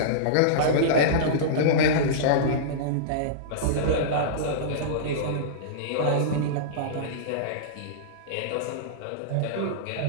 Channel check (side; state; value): both; different; correlation -0.04